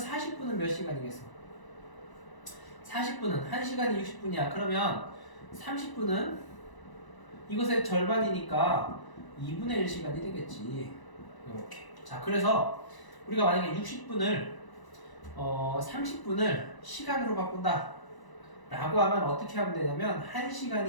몇 시간이겠어? 40분은 1시간이 60분이야. 그러면 30분은 이것의 절반이니까 2분의 1 시간이 되겠지. 이렇게. 자, 그래서 우리가 만약에 60분을 30분을 시간으로 바꾼다 라고 하면 어떻게 하면 되냐면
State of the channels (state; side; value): late; right; 1.0 ms